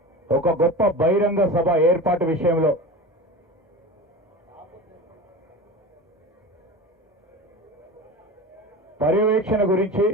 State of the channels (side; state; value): both; normal; correlation 0.30